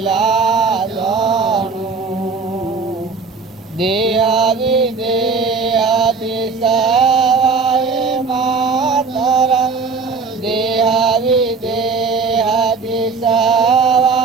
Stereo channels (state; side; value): quieter; left; 4.7 dB